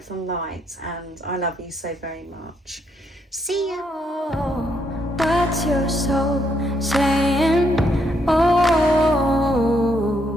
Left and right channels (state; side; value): normal; both; correlation 0.75